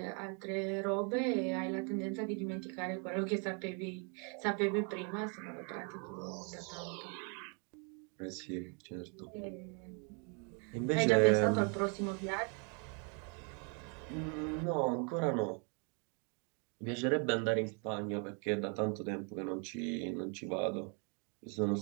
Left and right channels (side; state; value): left; quieter; 37.3 dB